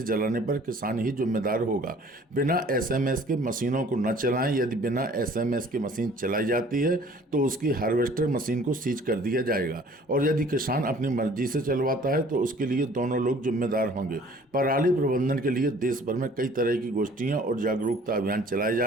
जलाने पर किसान ही जिम्मेदार होगा। बिना एसएमएस के मशीनों को न चलाएं। यदि बिना एसएमएस के मशीन चलाई जाती है तो उसकी हार्वेस्टर मशीन को सीज कर दिया जाएगा, और यदि किसान अपनी मर्जी से चलवाता है तो उसके लिए दोनों लोग जिम्मेदार होंगे। पराली प्रबंधन के लिए देश भर में कई तरह की गोष्ठियां और जागरूकता अभियान चलाए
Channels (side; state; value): both; normal; correlation 0.53